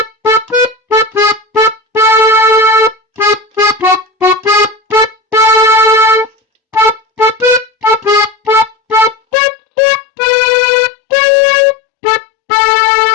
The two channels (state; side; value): drops out; right; at 9.2 s